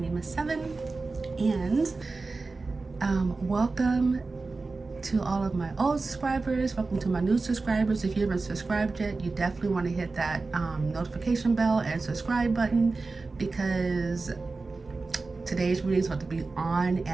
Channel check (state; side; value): quieter; left; 3.8 dB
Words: is Seven, and welcome to all of my old subscribers. Welcome to my new subscribers. If you haven't subscribed yet, you definitely want to hit that notification bell and subscribe button, because today's reading is about to be on